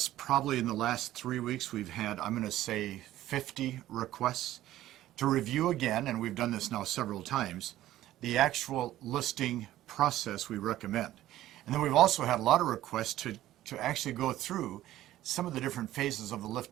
probably in the last 3 weeks, we've had, I'm going to say, 50 requests to review again, and we've done this now several times, the actual listing process we recommend. And then we've also had a lot of requests to actually go through some of the different phases of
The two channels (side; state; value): left; quieter; 14.2 dB